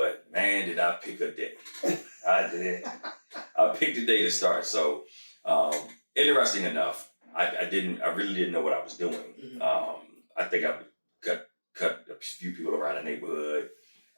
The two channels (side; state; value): both; inverted; correlation -1.00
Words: man, did I pick a day. I did. I picked a day to start. So interesting enough, I really didn't know what I was doing. Mm-hmm. I think I cut a few people around the neighborhood